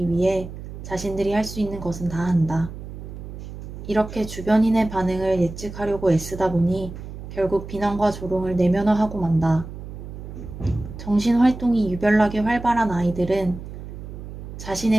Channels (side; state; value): right; noise; hum, 11 dB below the sound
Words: 위해 자신들이 할 수 있는 것은 다 한다. 이렇게 주변인의 반응을 예측하려고 애쓰다 보니 결국 비난과 조롱을 내면화하고 만다. 정신활동이 유별나게 활발한 아이들은